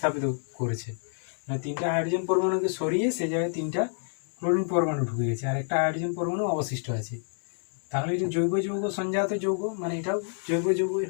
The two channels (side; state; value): right; silent; 59 dB below the other